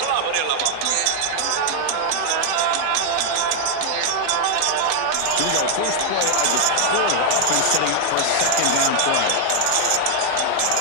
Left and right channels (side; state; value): both; different; correlation 0.00